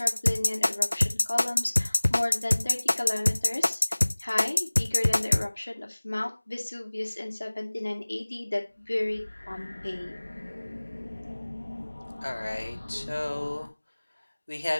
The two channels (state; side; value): inverted; both; correlation -1.00